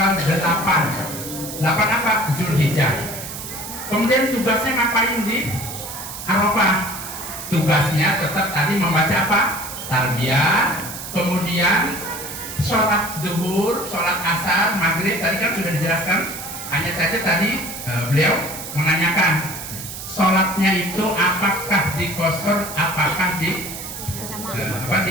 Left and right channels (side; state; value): right; noise; hiss, 9 dB below the sound